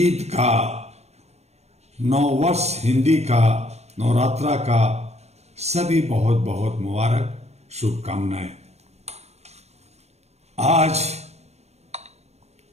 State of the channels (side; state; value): left; late; 0.31 ms